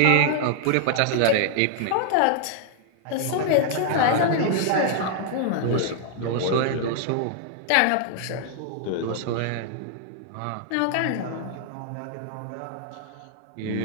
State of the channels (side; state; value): both; different; correlation -0.01